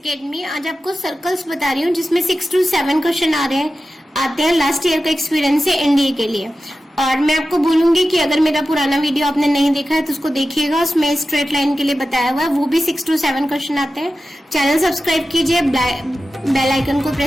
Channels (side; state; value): both; normal; correlation 0.93